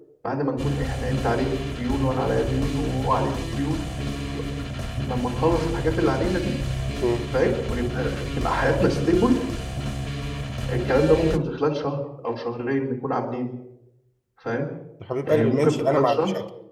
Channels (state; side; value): identical; both; correlation 1.00